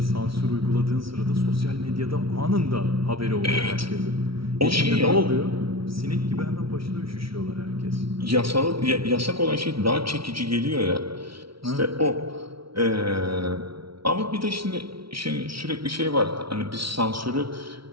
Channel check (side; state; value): left; late; 0.75 ms